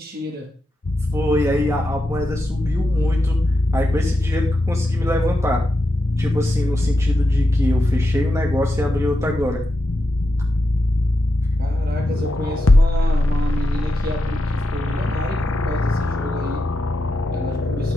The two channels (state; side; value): normal; both; correlation 0.87